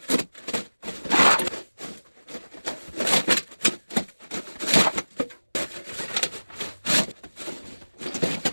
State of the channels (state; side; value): inverted; both; correlation -1.00